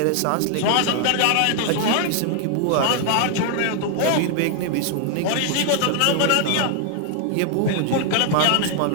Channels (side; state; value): both; different; correlation 0.00